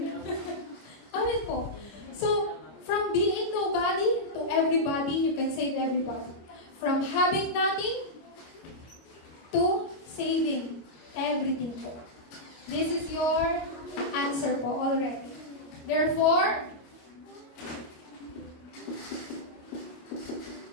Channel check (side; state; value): right; late; 26 ms